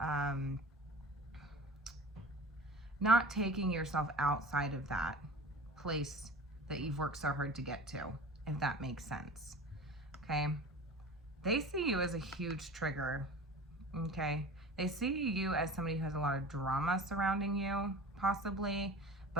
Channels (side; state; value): both; normal; correlation 0.38